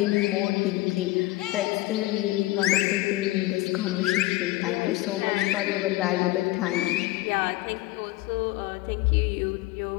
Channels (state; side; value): quieter; right; 18.4 dB